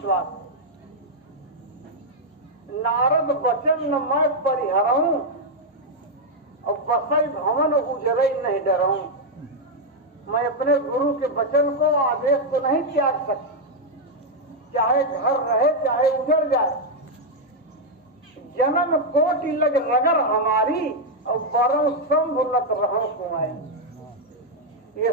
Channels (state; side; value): normal; both; correlation -0.01